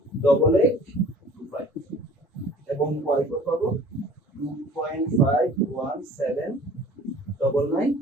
এবং y4 পাবো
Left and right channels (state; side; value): normal; both; correlation 0.49